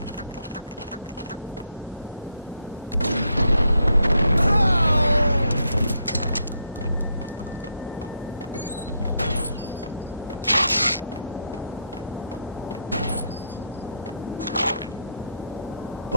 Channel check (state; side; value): inverted; both; correlation -0.77